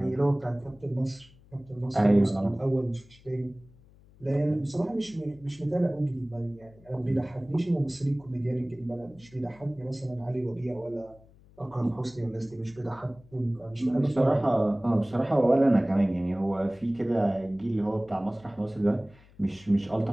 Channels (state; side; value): noise; left; hum, 26 dB below the sound